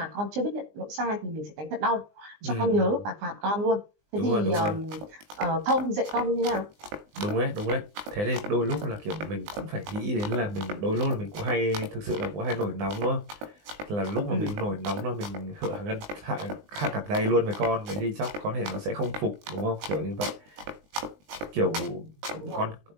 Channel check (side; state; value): left; late; 19 ms